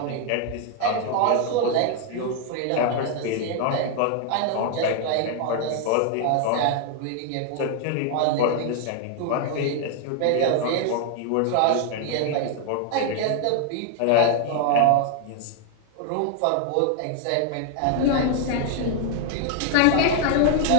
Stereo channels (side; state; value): both; different; correlation 0.00